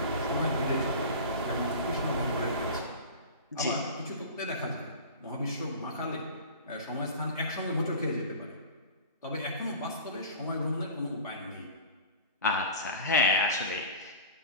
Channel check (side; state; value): both; inverted; correlation -0.35